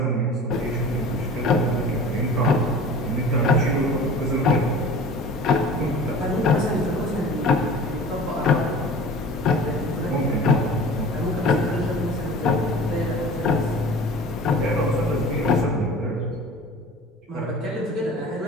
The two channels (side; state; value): both; normal; correlation 0.40